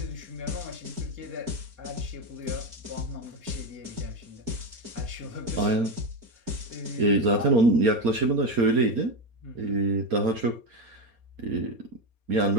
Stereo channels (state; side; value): late; left; 4.3 ms